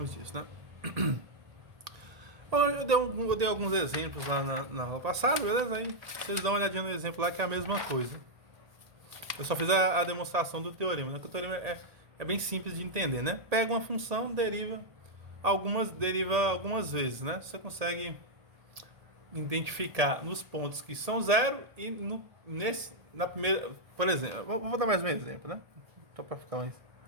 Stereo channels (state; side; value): late; left; 1.8 ms